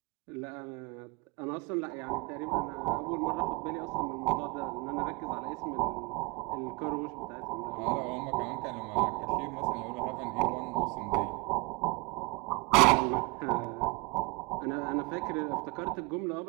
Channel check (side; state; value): left; quieter; 27.3 dB